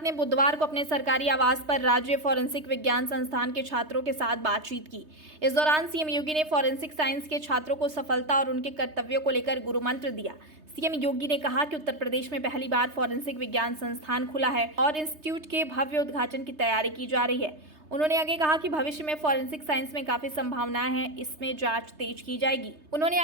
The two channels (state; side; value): late; left; 3.3 ms